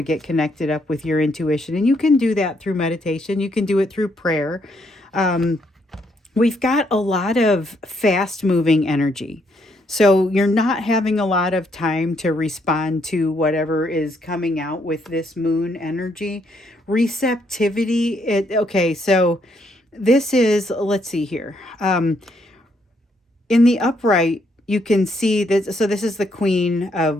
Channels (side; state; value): both; normal; correlation 0.73